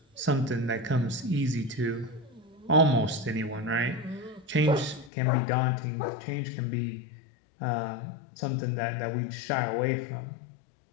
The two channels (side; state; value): right; drops out; at 5.1 s